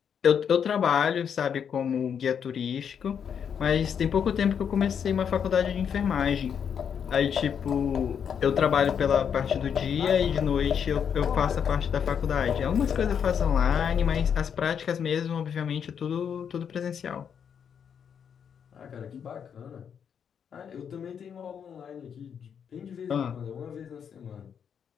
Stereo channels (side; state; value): right; quieter; 7.6 dB